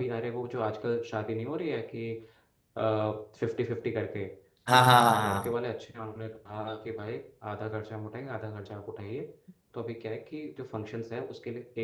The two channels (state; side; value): identical; both; correlation 1.00